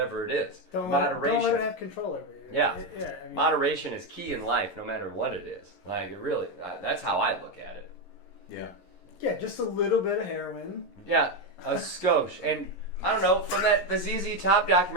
it is. Moderation. Don't let it have control over you. Yeah. I mean, Moderation is key in life, no matter what it is. Like, it really, that's how I look at it. Yeah. Yeah, just a little bit of heroin. Yeah, a skosh. And I don't know, from the ZZ Top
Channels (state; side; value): late; right; 11 ms